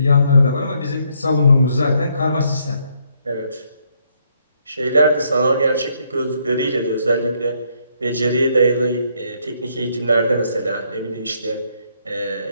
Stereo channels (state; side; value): inverted; both; correlation -0.72